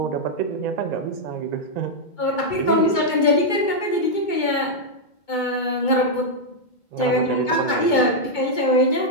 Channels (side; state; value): right; late; 2.2 ms